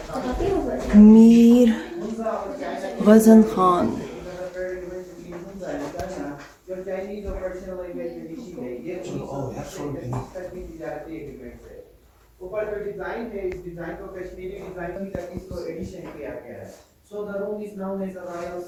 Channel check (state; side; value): identical; both; correlation 1.00